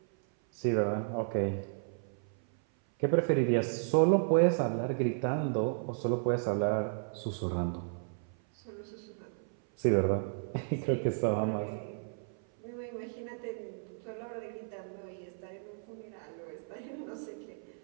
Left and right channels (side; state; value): left; silent; 55 dB below the other